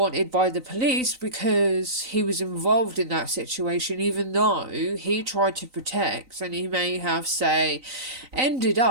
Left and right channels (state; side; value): late; left; 3.9 ms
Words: by the police because he was involved in that situation, even though he tried to protect, and he may have, say, ended